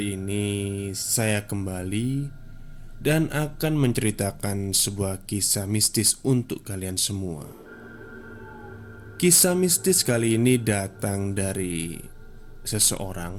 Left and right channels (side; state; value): both; identical; correlation 1.00